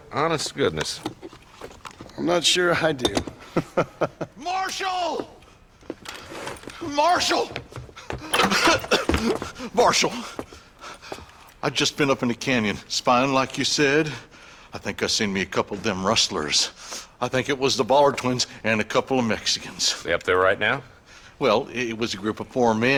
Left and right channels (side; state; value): both; identical; correlation 1.00